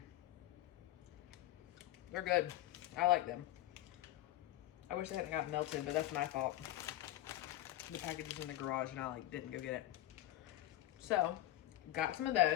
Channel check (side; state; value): right; quieter; 14.5 dB